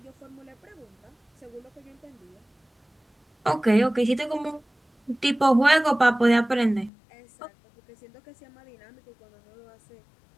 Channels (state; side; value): drops out; right; at 6.9 s